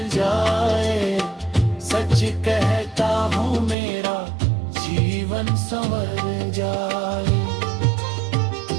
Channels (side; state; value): left; drops out; at 3.8 s